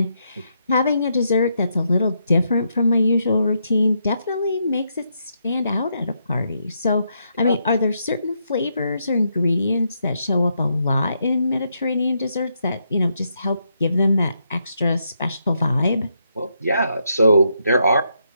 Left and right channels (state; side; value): inverted; both; correlation -0.79